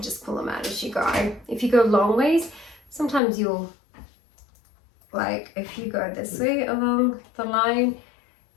just pull them out as you go. If you go long ways, sometimes you'll, like if you go this way along the line,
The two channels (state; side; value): drops out; right; at 3.2 s